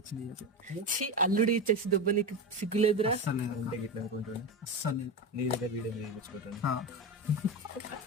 అల్లుడి చెస్ దెబ్బ నీకు సిగ్గులేదురా?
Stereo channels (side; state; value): both; normal; correlation 0.18